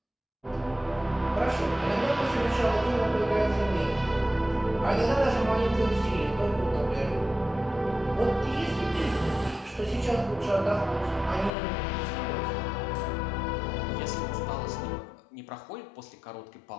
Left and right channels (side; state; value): right; drops out; at 11.5 s